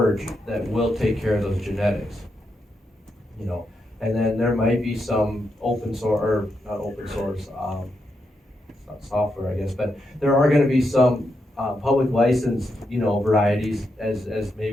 that will take care of those genetics. And then there might be some open source, or not open source, it's not software, I guess, but there are gonna be some public licensed, varieties as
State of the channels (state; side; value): normal; both; correlation 0.83